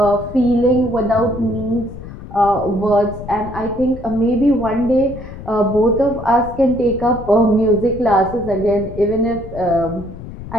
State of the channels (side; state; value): left; noise; rumble, 13 dB below the sound